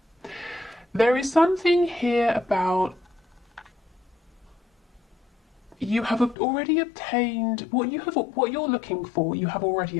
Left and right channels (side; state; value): right; drops out; at 6.4 s